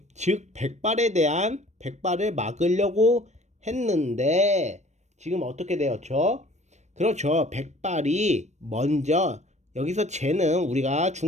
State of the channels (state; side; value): late; left; 0.34 ms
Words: 즉 백발을 막으려고 했는데, 지금 어떻게 되었죠? 그렇죠. 백발이 먼저, 여기서 쟤는 우리가